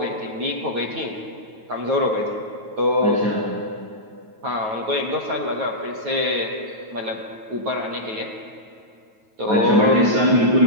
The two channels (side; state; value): left; late; 9.3 ms